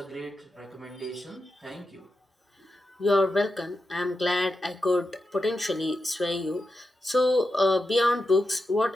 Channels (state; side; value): normal; both; correlation 0.89